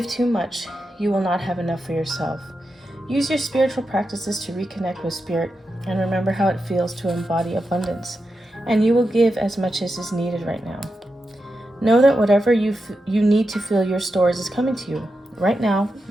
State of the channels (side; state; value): both; normal; correlation 0.88